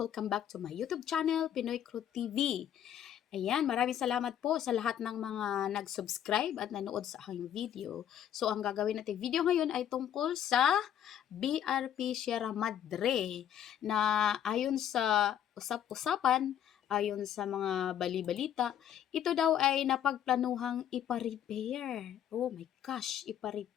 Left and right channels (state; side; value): quieter; right; 10.1 dB